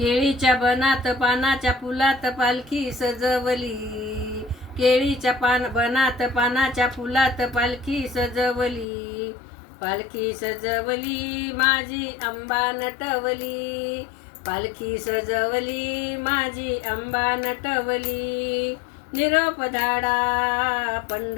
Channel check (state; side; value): drops out; right; at 8.8 s